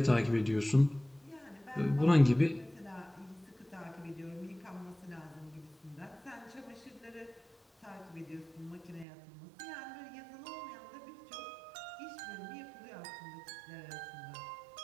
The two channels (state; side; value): drops out; left; at 9.1 s